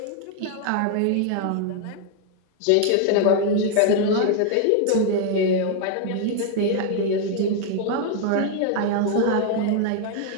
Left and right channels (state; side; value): different; both; correlation 0.00